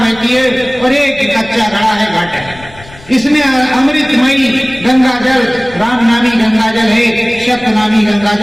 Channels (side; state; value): left; noise; rumble, 21 dB below the sound